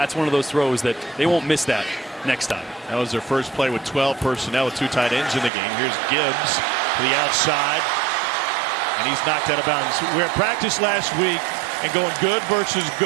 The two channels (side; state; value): left; drops out; at 5.5 s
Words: one of those throws that they won't miss that next time. That was their first play with 12 personnel with 2 tight ends in the game. Here's Gibbs to the outside, and he's knocked out of bounds. We were at practice last week and going good versus